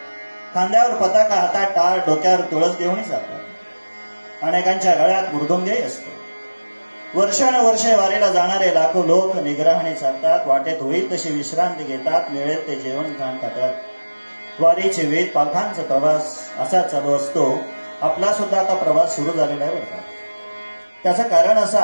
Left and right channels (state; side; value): inverted; both; correlation -1.00